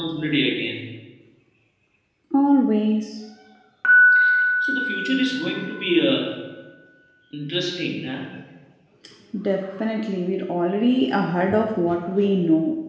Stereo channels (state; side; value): identical; both; correlation 1.00